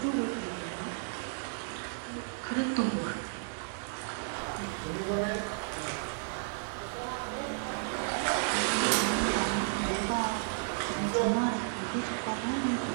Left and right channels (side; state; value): left; silent; digital silence